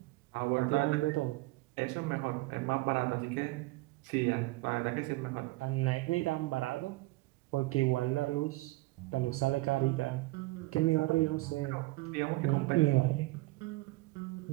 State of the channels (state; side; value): quieter; left; 21.4 dB